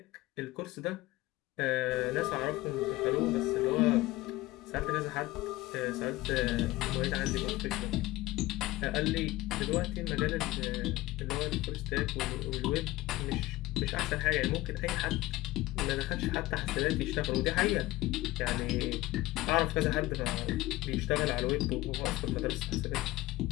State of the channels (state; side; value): quieter; right; 18.5 dB